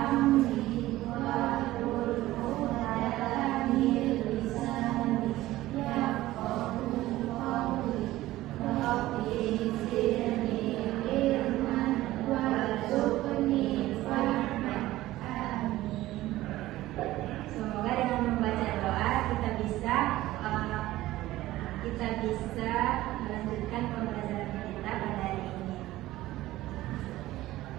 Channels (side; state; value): left; quieter; 16.3 dB